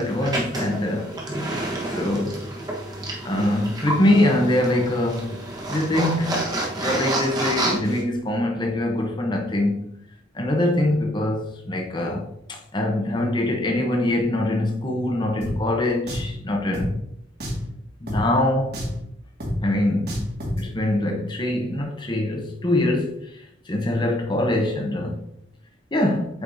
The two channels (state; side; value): normal; both; correlation 0.67